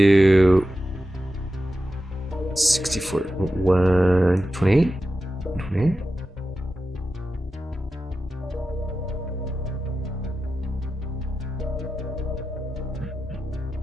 64, 128, 128.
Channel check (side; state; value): both; normal; correlation 0.91